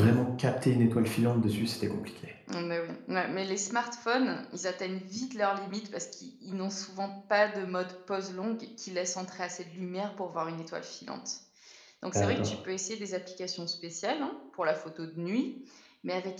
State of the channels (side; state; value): both; identical; correlation 1.00